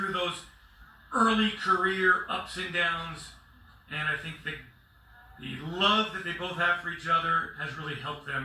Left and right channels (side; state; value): both; identical; correlation 1.00